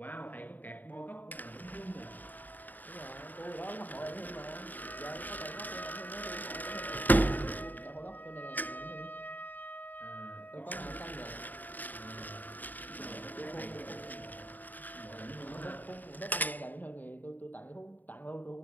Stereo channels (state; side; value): late; right; 0.085 ms